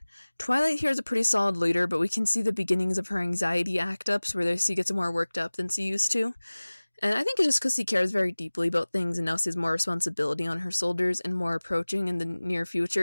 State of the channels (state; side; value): inverted; both; correlation -1.00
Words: Twilight here is a pretty solid leader, but we can see the beginnings of her anxiety act-ups where she gets more worked up than she used to. And I think it's just because she cares very deeply about things and now she has more responsibility on her shoulders and more approaching in the near